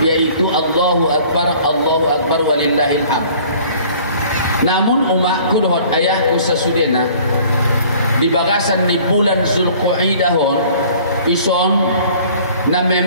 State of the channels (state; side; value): inverted; both; correlation -0.52